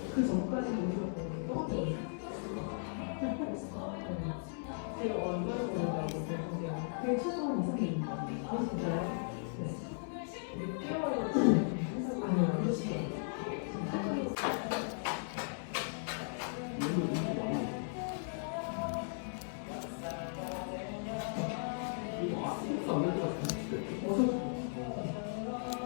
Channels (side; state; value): right; silent; digital silence